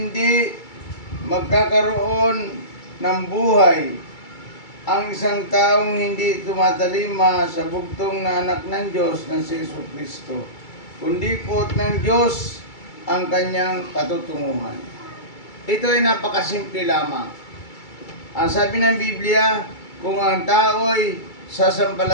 magkakaroon ng buhay ang isang taong hindi tumatalima sa bugtong na anak ng Diyos na si Jesucristo, kundi po ng Diyos ang kanyang patutunguhan. Ito ay napakasimple lamang. Ang sabi ng Biblia, kung ang tao ay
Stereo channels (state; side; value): late; right; 2.3 ms